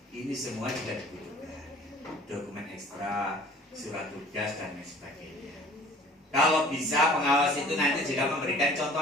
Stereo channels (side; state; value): both; normal; correlation 0.49